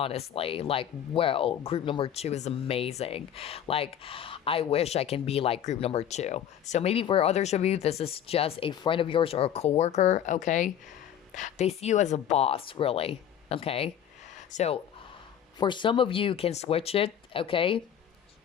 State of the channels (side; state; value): right; quieter; 9.7 dB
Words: Like, well, group number two is amazing. Like, I wish I can be like group number two. So maybe for others of you, this is just a friend of yours or a coworker, okay? They see you as a boss, really, okay? So for some of you, can switch it, okay?